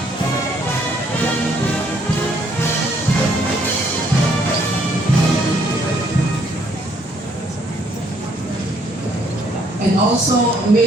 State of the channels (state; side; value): normal; both; correlation 0.67